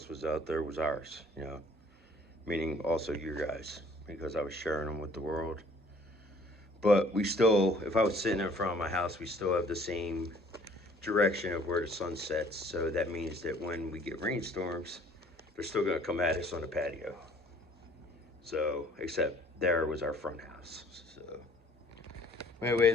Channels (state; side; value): normal; both; correlation 0.56